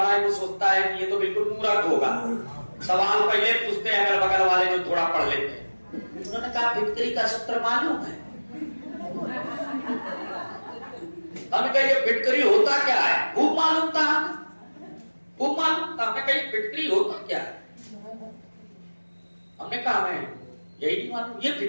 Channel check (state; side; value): inverted; both; correlation -1.00